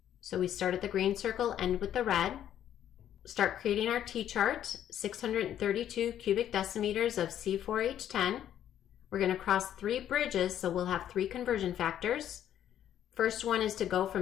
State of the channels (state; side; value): quieter; right; 10.7 dB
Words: So we start at the green circle, end with the red. Start creating our T-chart, 632 cubic decimeters of C4H10. We're going to cross 3 bridges, so we'll have 3 conversion factors. First one is to go